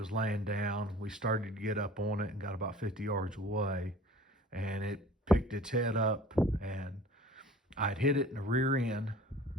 laying down. We started to get up on it and got about 50 yards away, and it picked its head up, and I'd hit it in the rear end,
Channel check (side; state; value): both; normal; correlation 0.46